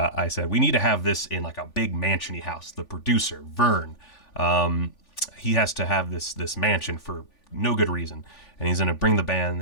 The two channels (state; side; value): late; right; 3.5 ms